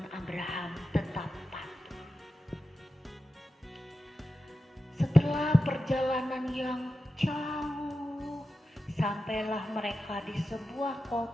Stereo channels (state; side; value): normal; both; correlation 0.91